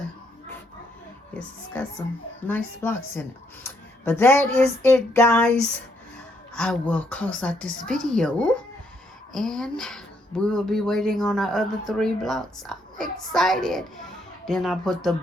Yes, it's got some nice blocks in it. But that is it, guys. I will close out this video. And we will be waiting on our other 3 blocks. I'm excited. Then I put the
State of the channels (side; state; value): both; normal; correlation 0.73